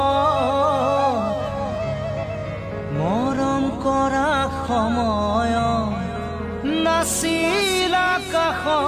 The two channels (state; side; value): identical; both; correlation 1.00